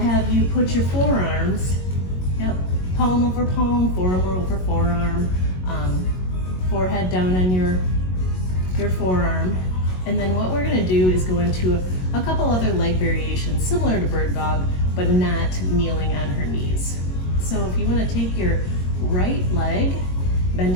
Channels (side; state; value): right; late; 22 ms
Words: you put your forearms, yep, palm over palm, forearm over forearm, forehead down on your forearm. And then what we're gonna do is go into a couple other leg variations similar to bird dog, but not kneeling on her knees. So if you wanna take your right leg, bend